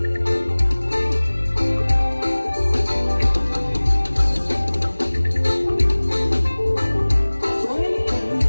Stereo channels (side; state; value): both; inverted; correlation -1.00